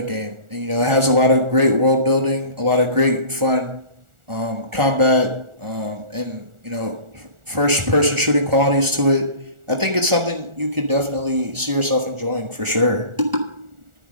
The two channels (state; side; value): late; left; 1.4 ms